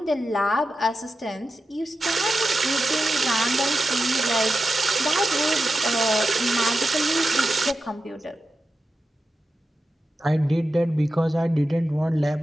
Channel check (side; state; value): both; normal; correlation 0.91